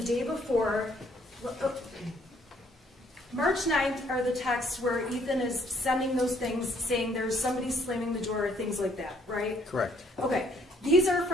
day before. March 9th are the texts where Ethan is sending those things saying there's somebody slamming the door or things like that, right? Correct. Okay, these are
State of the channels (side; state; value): both; normal; correlation 0.65